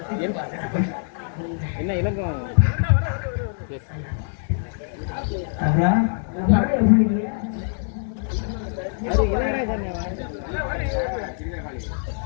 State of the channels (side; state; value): right; silent; 63 dB below the other